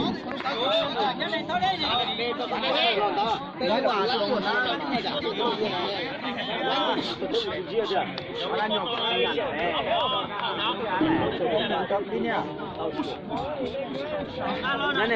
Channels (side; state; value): both; identical; correlation 1.00